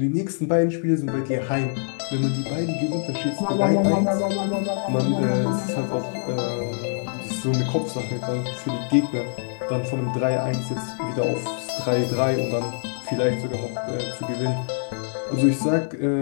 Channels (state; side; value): silent; right; digital silence